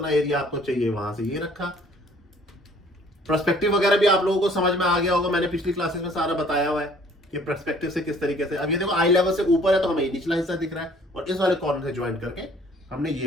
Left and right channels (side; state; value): both; normal; correlation 0.56